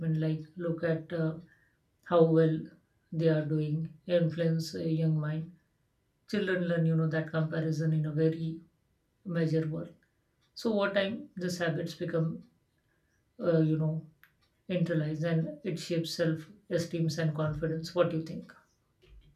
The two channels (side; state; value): both; identical; correlation 1.00